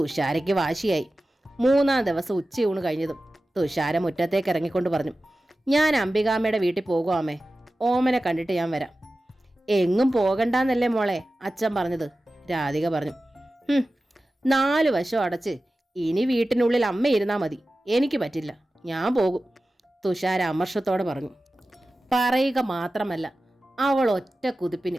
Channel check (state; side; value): normal; both; correlation 0.95